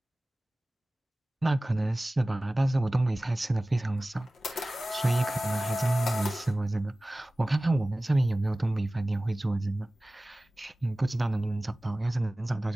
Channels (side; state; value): both; normal; correlation 0.98